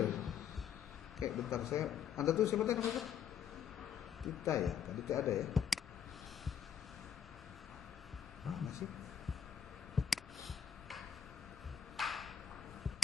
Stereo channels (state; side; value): quieter; right; 8.6 dB